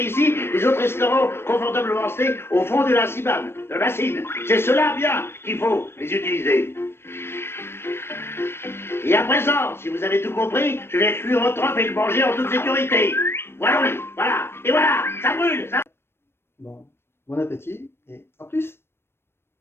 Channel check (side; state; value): right; late; 0.12 ms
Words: ici, les autres restaurants confortablement restés au fond de la cibane, de la bassine. C'est cela bien qu'il faut les utiliser. Et à présent, si vous avez tout compris, je vais cuire votre œuf et le manger en toute sécurité. Voilà, oui, voilà, et voilà, ça brûle, ça... Bon appétit et à plus!